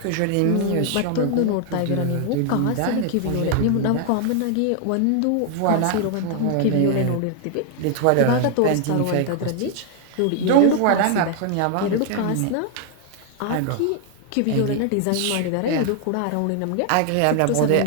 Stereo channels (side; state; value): both; different; correlation 0.00